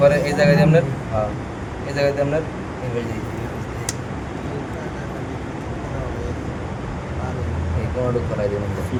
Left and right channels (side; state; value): both; identical; correlation 1.00